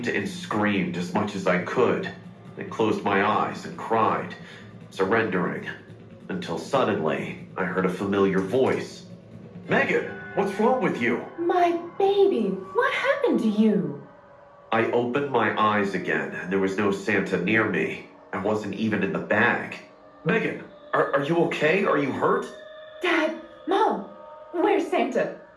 and screamed as much as I could, then closed my eyes and cried, surrendering, until suddenly I heard a familiar voice. Megan, what's wrong with you? My baby, what happened to you? I opened my eyes again, and there was no Santa near me. I wasn't even in the bag. Megan, are you okay? Are you hurt? Dad, Mom, where's Santa?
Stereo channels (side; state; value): both; identical; correlation 1.00